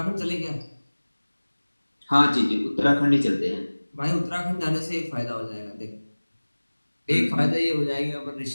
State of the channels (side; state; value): both; inverted; correlation -1.00